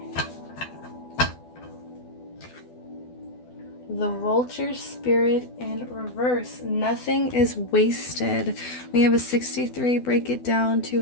The Vulture Spirit in reverse. Nothing is wasted. We have a 63. Break it down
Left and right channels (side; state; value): right; late; 12 ms